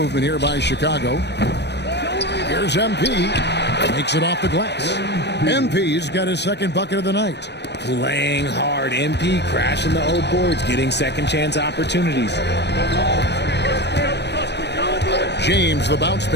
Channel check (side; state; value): right; late; 0.50 ms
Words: here by Chicago. Here's MP. Makes it off the glass. MP's got his second bucket of the night. Playing hard. MP crashing the old boards, getting second chance opportunities. James, the bounce